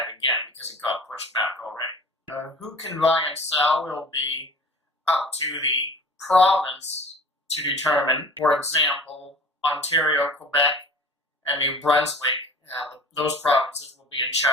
again, because it got pushed back already. Who can buy and sell will be up to the province to determine. For example, Ontario, Quebec, and New Brunswick, those provinces will be in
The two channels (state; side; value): normal; both; correlation 0.43